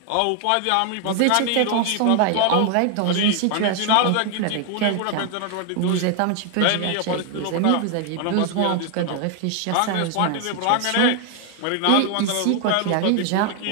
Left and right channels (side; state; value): both; different; correlation 0.00